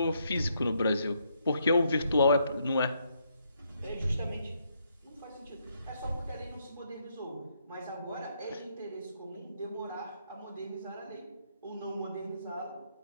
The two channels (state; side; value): inverted; both; correlation -0.75